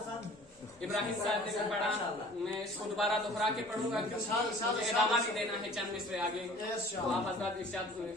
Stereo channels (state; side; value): normal; both; correlation 0.48